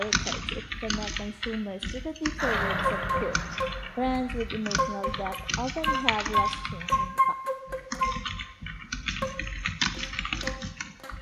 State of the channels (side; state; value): both; identical; correlation 1.00